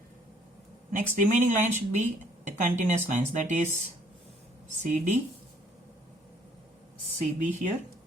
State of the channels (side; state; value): both; normal; correlation 0.62